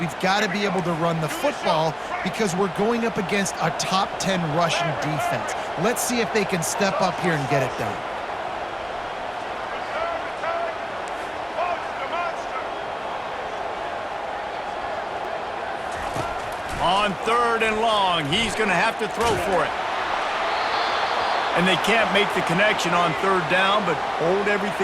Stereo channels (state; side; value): identical; both; correlation 1.00